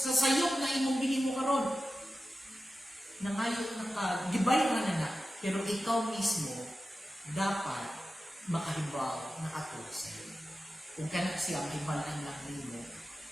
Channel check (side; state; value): both; normal; correlation 0.93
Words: sayop na imong bilhin mo karon? Nangayon gibay na, pero ikaw mismo dapat makahibaw nakatulog sa iyo. Kung kana siya mahibalaan lang nimo,